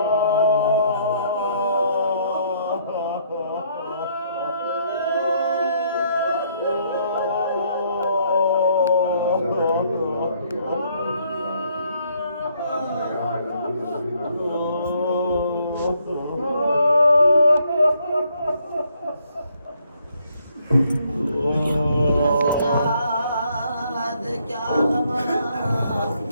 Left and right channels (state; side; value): inverted; both; correlation -0.69